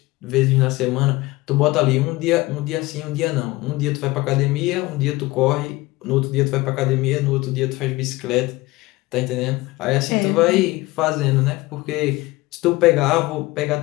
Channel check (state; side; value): quieter; right; 20.4 dB